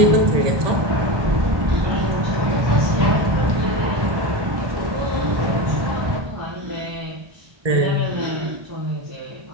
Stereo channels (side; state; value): left; late; 1.2 ms